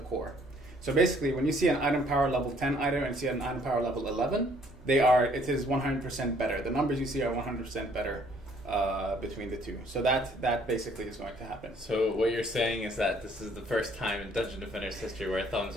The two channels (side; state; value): both; normal; correlation 0.62